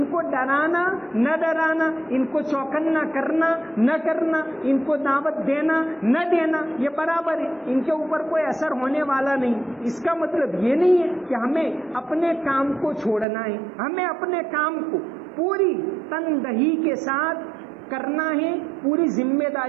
کو ڈرانا نہ ڈرانا, ان کو چوکنا کرنا نہ کرنا, ان کو دعوت دینا نہ دینا یہ برابر ہے, ان کے اوپر کوئی اثر ہونے والا نہیں. اس کا مطلب یہ نہیں ہے کہ ہمیں اپنے کام کو چھوڑنا ہے, ہمیں اپنے کام کو پوری تندہی کے ساتھ کرنا ہے, پوری ذمہ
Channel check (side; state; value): left; drops out; at 13.2 s